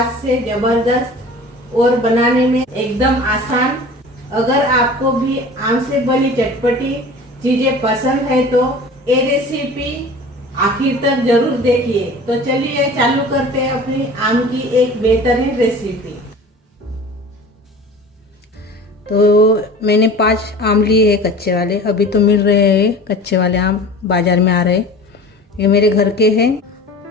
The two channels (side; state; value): both; normal; correlation 0.40